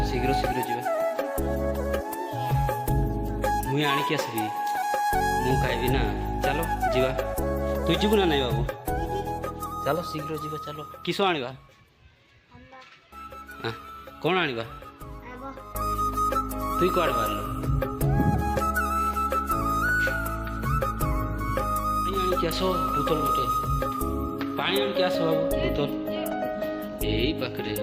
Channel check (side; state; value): both; identical; correlation 1.00